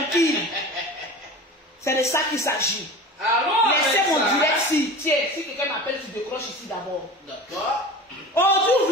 C'est de ça qu'il s'agit. Allô. Laissez mon Alexa. direct si. Tiens, si quelqu'un m'appelle, tu décroches ici d'abord. D'accord. Aujourd'hui, vous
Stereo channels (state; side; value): normal; both; correlation 0.35